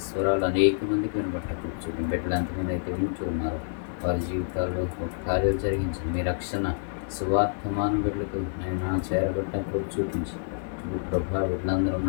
స్వరాలు అనేక మందికి వినబట్ట కూర్చోండి. బిడ్డలు ఎంతమంది అయితే వింటూ ఉన్నారు వారి జీవితాల్లో ఒక కార్యాలు జరిగించండి. మీ రక్షణ సువార్తమాన బిడ్డలకు ఆయన చేరబడ్డప్పుడు చూపించి ప్రభా బిడ్డలందరూ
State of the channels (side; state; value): right; silent; digital silence